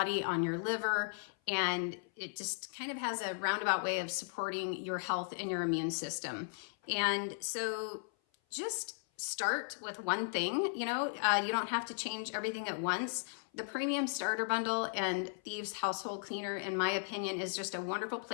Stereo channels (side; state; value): right; silent; 54 dB below the other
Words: on your liver, and it just kind of has a roundabout way of supporting your health and your immune system. And so just start with one thing. You don't have to change everything at once. The Premium Starter Bundle and Thieves Household Cleaner, in my opinion, is just a wonderful